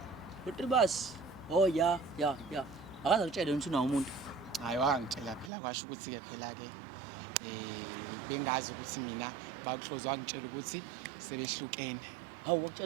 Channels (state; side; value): drops out; left; at 5.5 s